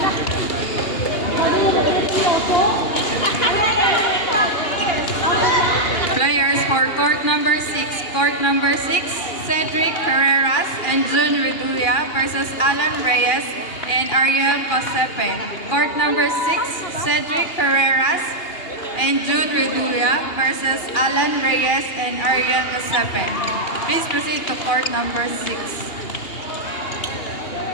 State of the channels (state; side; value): late; right; 2.8 ms